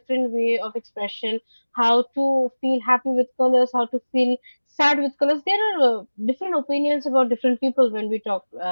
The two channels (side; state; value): both; inverted; correlation -1.00